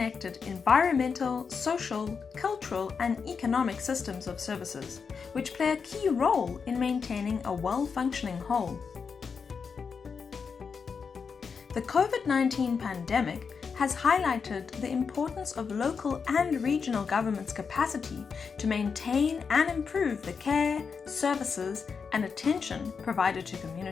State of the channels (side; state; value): right; quieter; 5.7 dB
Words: environmental, social, cultural, and economic systems of services, which play a key role in maintaining a well-functioning whole. The COVID-19 pandemic has highlighted the importance of local and regional governments' capacity to maintain and improve the care, services, and attention provided to